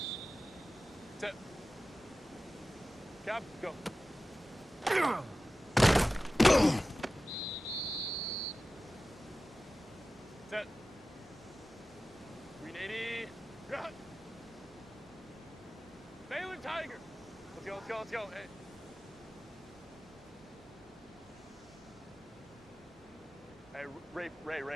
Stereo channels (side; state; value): both; normal; correlation 0.95